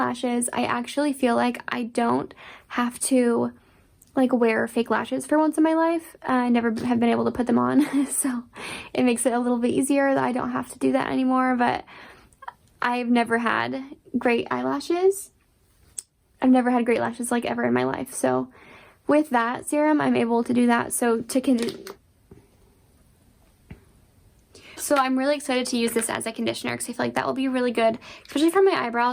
I actually feel like I don't have to like wear fake lashes for once in my life. I never have been able to put them on, so it makes it a little bit easier that I don't have to do that anymore. But I've never had great eyelashes. I've never had great lashes like ever in my life. So with that serum, I'm able to do that. So I'm really excited to use this as a conditioner because I feel like that will be really good, especially for my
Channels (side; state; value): both; identical; correlation 1.00